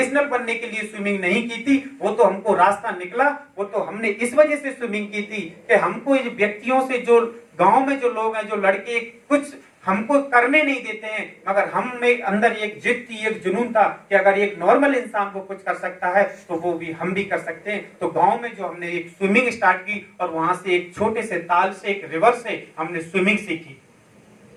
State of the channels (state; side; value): identical; both; correlation 1.00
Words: बनने के लिए स्विमिंग नहीं की थी, वो तो हमको रास्ता निकला, वो तो हमने इस वजह से स्विमिंग की थी कि हमको इस व्यक्तियों से, जो गांव में जो लोग हैं, जो लड़के कुछ हमको करने नहीं देते हैं, मगर हम में अंदर एक जिद थी, एक जुनून था कि अगर एक नॉर्मल इंसान को कुछ कर सकता है तो वो भी हम भी कर सकते हैं। तो गांव में जो हमने एक स्विमिंग स्टार्ट की और वहां से एक छोटे से ताल से, एक रिवर से हमने स्विमिंग सीखी।